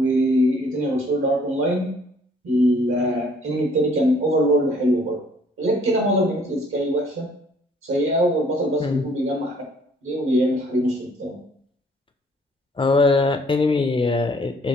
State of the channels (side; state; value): both; normal; correlation 0.60